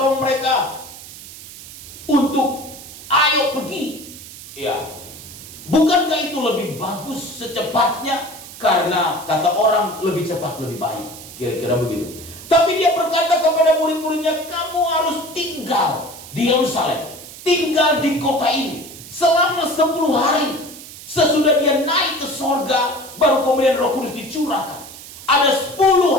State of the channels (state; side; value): noise; right; hiss, 15 dB below the sound